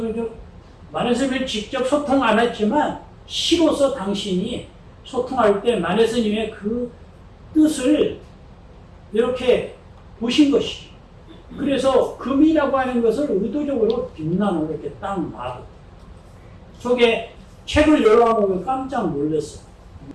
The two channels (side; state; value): both; identical; correlation 1.00